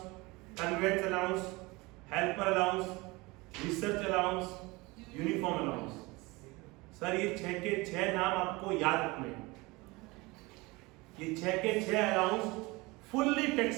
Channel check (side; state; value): left; quieter; 23.7 dB